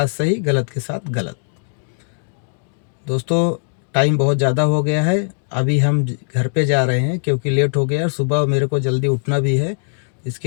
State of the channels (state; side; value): silent; right; digital silence